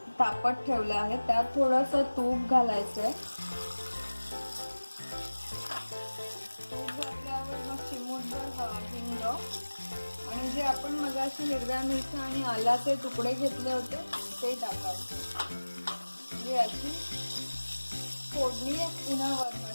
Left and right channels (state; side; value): inverted; both; correlation -1.00